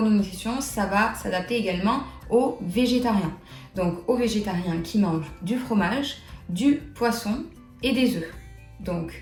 ça va s'adapter également aux végétariens. Donc aux végétariens qui mangent du fromage, du poisson et des œufs. Donc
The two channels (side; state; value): both; identical; correlation 1.00